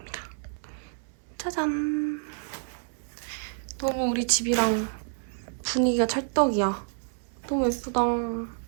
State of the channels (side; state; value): left; silent; digital silence